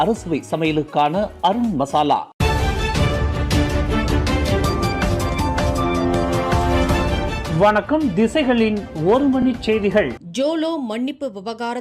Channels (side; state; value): both; identical; correlation 1.00